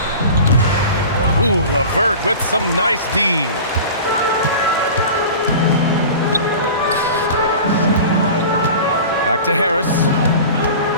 Ooh, LeVert with some nice D. Back to Harris.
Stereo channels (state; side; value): inverted; both; correlation -0.37